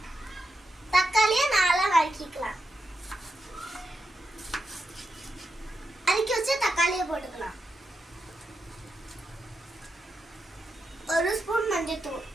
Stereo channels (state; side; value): normal; both; correlation 0.86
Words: தக்காளியை 4 நறுக்கிக்கலாம். நறுக்கி வச்சு தக்காளியை போட்டுக்கலாம். 1 ஸ்பூன் மஞ்சள்தூள்,